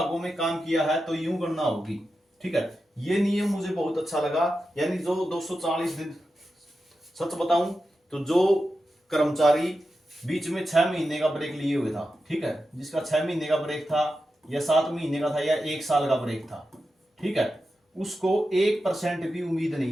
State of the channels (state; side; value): normal; both; correlation 0.90